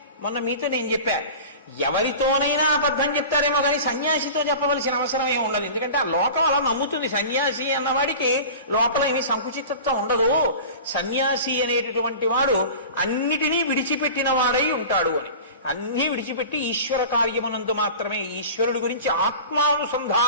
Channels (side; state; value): both; inverted; correlation -0.36